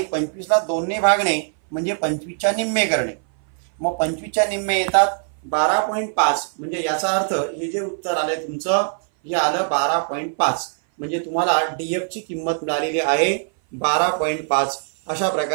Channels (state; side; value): silent; left; 60 dB below the other